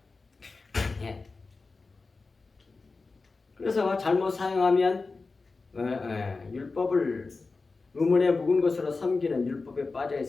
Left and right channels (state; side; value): quieter; right; 4.0 dB